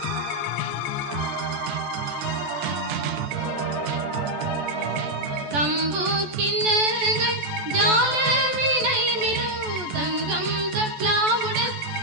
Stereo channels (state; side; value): late; left; 14 ms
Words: கம்பு கிண்ணங்கள் ஜால விலை மிரும், தங்கம் தப்லாவுடன்